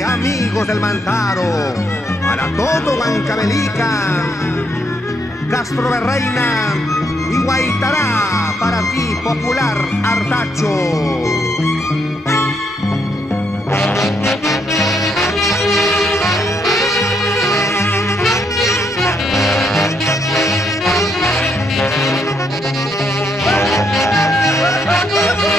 amigos del Mantaro, para todo Huancavelica, Castro de Reina y Guaitará, para ti, popular Artacho.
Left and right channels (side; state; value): both; normal; correlation 0.76